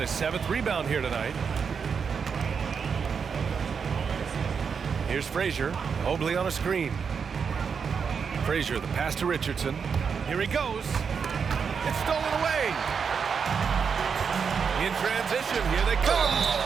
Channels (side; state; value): left; quieter; 6.2 dB